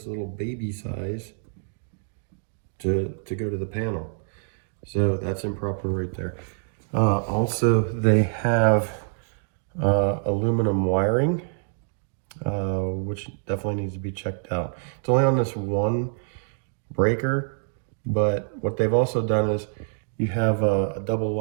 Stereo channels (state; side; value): silent; left; digital silence